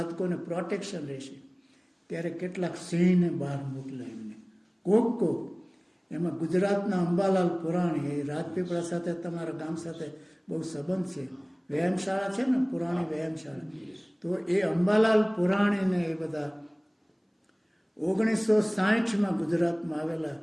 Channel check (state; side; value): identical; both; correlation 1.00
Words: પ્રોટેક્શન રહેશે, ત્યારે કેટલાક સિંહને બહાર મોકલ્યા એમને. કોક એમાં ગુજરાતના અંબાલાલ પુરાણી, એ રાજપીપળા સાથે તમારા ગામ સાથે બહુ સંબંધ છે, વ્યાયામશાળા છે ને, પુરાણી વ્યાયામશાળા. તો એ અંબાલાલ પુરાણીને એ બધા 1960માં ગુજરાતમાં આવેલા,